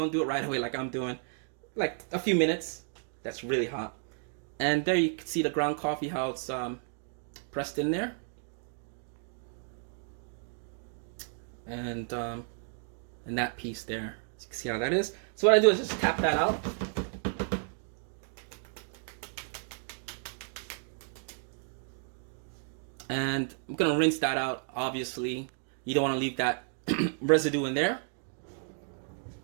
do it right away like I'm doing. Like a few minutes. That's really hot. And there you can see the ground coffee, how it's pressed in there. And that piece there. So you can see how that is. So what I do is just tap that out. And I'm gonna rinse that out, obviously. You don't want to leave that residue in there.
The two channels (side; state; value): left; silent; 56 dB below the other